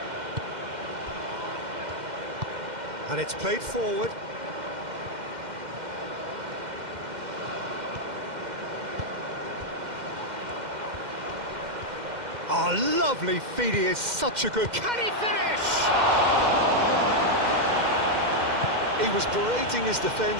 And it's played forward. Oh, lovely feed, he is such a good... Can he finish? He was berating his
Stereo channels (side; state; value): left; late; 2.1 ms